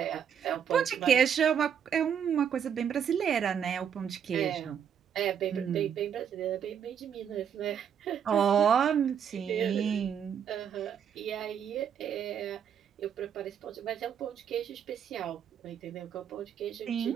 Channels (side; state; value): left; quieter; 8.2 dB